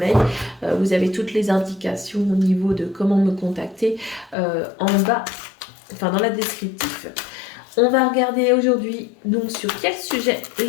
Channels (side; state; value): right; drops out; at 4.4 s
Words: Vous avez toutes les indications au niveau de comment me contacter en bas, enfin dans la descriptif. On va regarder aujourd'hui donc sur quel sujet